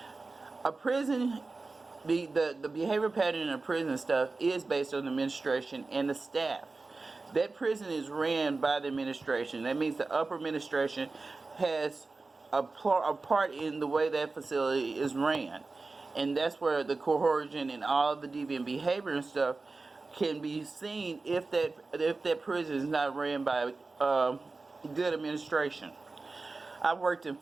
A prison, the behavior pattern in a prison stuff is based on the administration and the staff. That prison is ran by the administration. That means the upper administration has a part in the way that facility is ran. And that's where the coercion and all the deviant behavior and stuff can be seen if that prison is not ran by good administration. I've worked in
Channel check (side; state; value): left; quieter; 3.7 dB